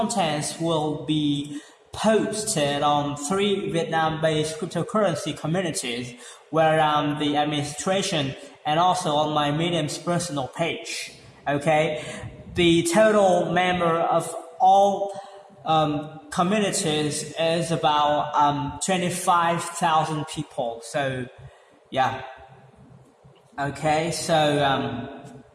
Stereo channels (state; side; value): identical; both; correlation 1.00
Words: will be posted on 3 Vietnam-based cryptocurrency communities where I'm the administration, and also on my Medium's personal page. The total member of all communities is about 25,000 people. So yeah. So